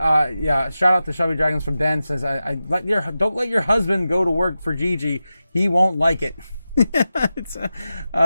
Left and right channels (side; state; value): both; inverted; correlation -0.93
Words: yeah, shout out to Shadowy Dragons from Ben, says, don't let your husband go to work for Gigi. He won't like it. It's,